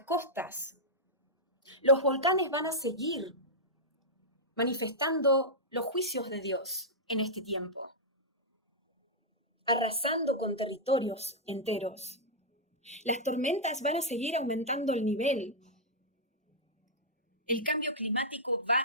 costas, los volcanes van a seguir manifestando los juicios de Dios en este tiempo, arrasando con territorios enteros. Las tormentas van a seguir aumentando el nivel. El cambio climático va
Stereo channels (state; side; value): normal; both; correlation -0.09